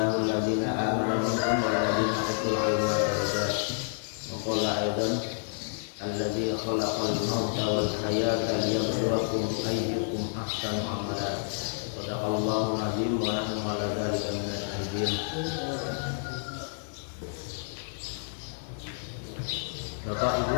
alladhina amanu minkum wal ladzina utul ilma darajat. Wa qala aidan alladzi khalaqal mauta wal hayata liyabluwakum ayyukum ahsanu amala. Sadaqallahu azim wa nahnu ala dzalika minasy syahidin. Bapak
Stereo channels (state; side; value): silent; right; digital silence